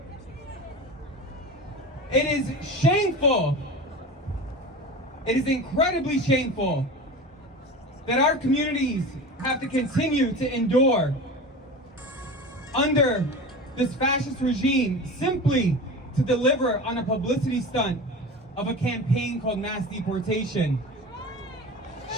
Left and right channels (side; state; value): both; normal; correlation 0.31